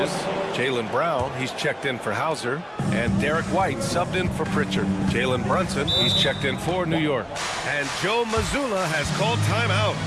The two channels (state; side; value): identical; both; correlation 1.00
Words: Jaylen Brown, he's checked in for Hauser. And Derek White subbed in for Pritchard. Jalen Brunson, he's checked in for New York. And Joe Mazzulla has called timeout.